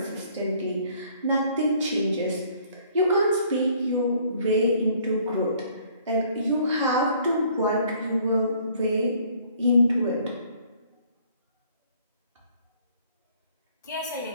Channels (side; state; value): both; inverted; correlation -0.59